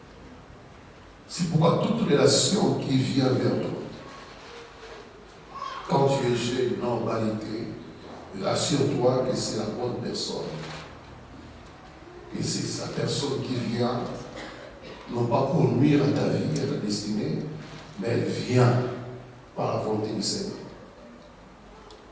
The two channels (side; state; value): both; identical; correlation 1.00